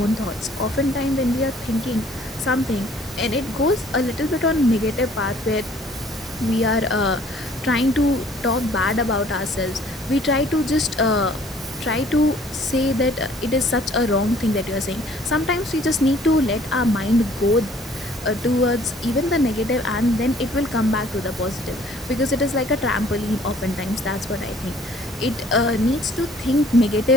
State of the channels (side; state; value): both; normal; correlation 0.56